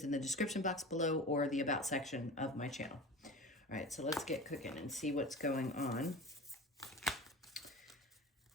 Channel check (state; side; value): normal; both; correlation 0.34